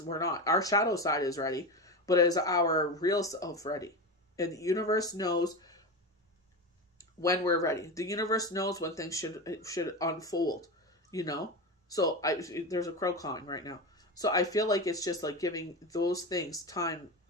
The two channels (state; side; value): normal; both; correlation 0.21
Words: we're not. Our shadow side is ready, but is our real self ready? And the universe knows when we're ready. The universe knows when things should unfold, you know? So there's a crow cawing right now. So I feel like it's just like giving those things time